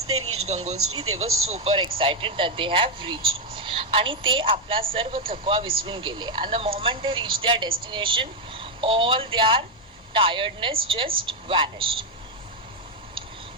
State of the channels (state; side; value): normal; both; correlation 0.03